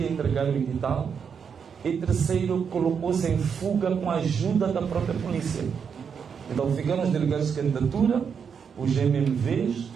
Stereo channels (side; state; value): left; quieter; 6.8 dB